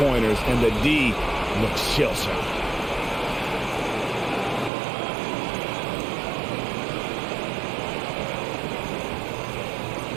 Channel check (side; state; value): left; drops out; at 4.7 s